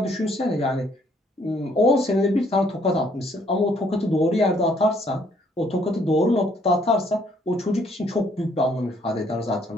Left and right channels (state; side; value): normal; both; correlation 0.65